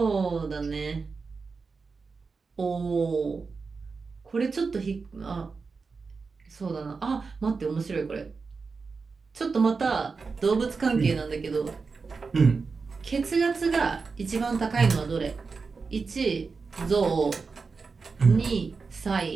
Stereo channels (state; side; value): quieter; left; 4.7 dB